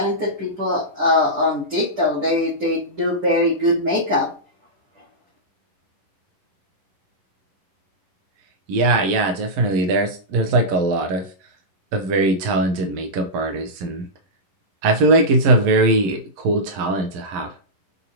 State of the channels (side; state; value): left; late; 11 ms